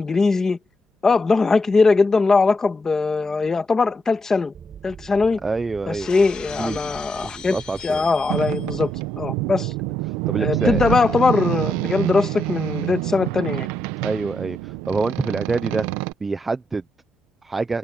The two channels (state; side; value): normal; both; correlation 0.81